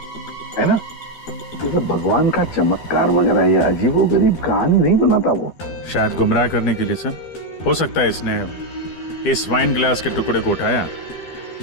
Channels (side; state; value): right; late; 12 ms